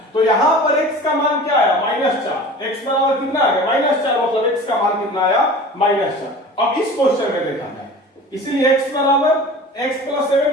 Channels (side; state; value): both; normal; correlation 0.39